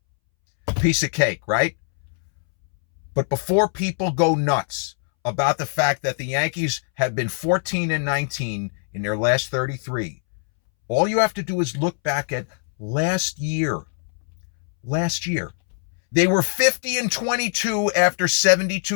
Piece of cake, right? But before people go nuts about the fact that the Yankees have been 14-19 in their last 33, all you have to do is look back at last year. Last year, they were 50-22 after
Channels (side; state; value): right; silent; 64 dB below the other